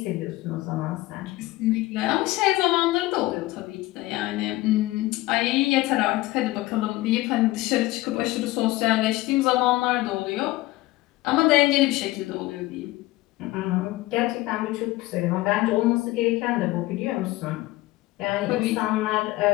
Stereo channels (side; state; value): right; quieter; 18.7 dB